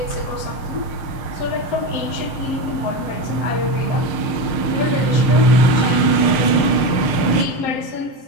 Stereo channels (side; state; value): right; late; 6.7 ms